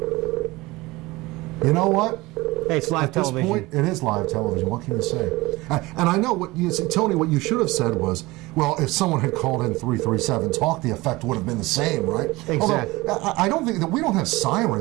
You know what? Hey, it's live television. At this point, it is live television. What can you say? And I know what you see, Tony. What you should have said was, well, if someone had called in 337 talk, the effect would have been the same, right? Exactly. Although, I don't think that we don't have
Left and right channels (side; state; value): left; quieter; 21.1 dB